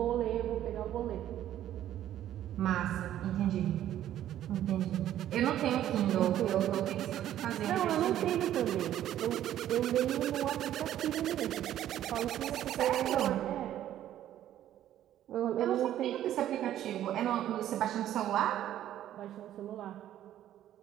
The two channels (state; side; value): quieter; left; 12.0 dB